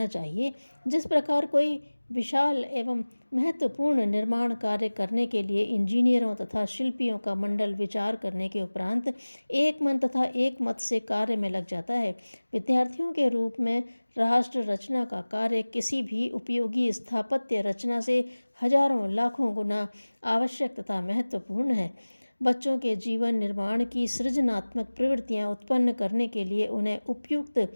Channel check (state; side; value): inverted; both; correlation -1.00